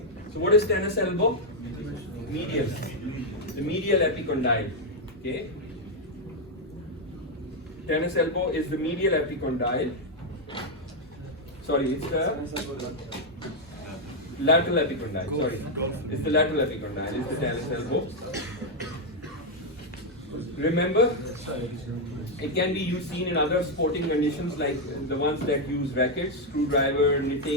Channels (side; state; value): both; normal; correlation 0.01